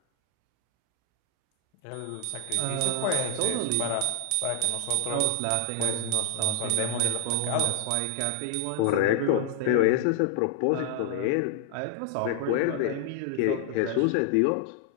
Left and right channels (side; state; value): both; different; correlation 0.00